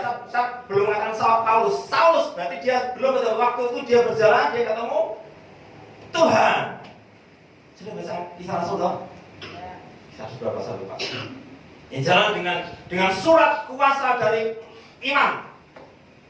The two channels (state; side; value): identical; both; correlation 1.00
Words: saya belum mengatakan Paulus. Saulus berarti dia belum betul. Waktu itu dia berjalan, dia ketemu Tuhan. Sudah baca Kisah Rasul dong? Kisah Rasul berapa saya lupa. Yang jalan dengan surat kuasa dari imam.